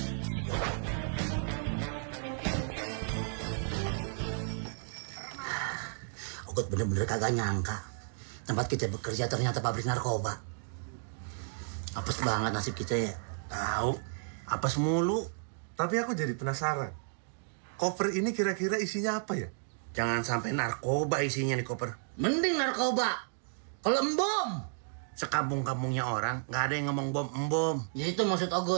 Ogut bener-bener kagak nyangka. Tempat kita bekerja ternyata pabrik narkoba. Apes banget nasib kita ya. Tahu, apes mulu. Tapi aku jadi penasaran. Koper ini kira-kira isinya apa ya? Jangan sampai narkoba isinya nih koper. Mending narkoba. Kalau embom. Sekampung-kampungnya orang, nggak ada yang ngomong bom. Ya itu maksud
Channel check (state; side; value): silent; left; digital silence